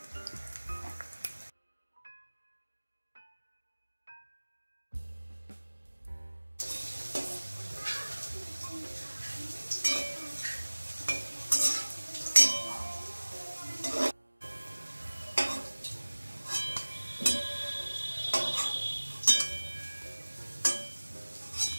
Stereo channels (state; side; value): inverted; both; correlation -1.00